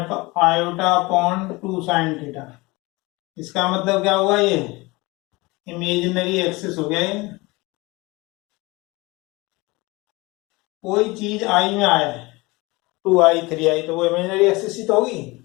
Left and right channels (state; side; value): quieter; right; 23.4 dB